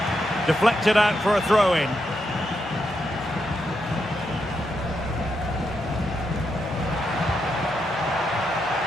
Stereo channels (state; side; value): normal; both; correlation 0.83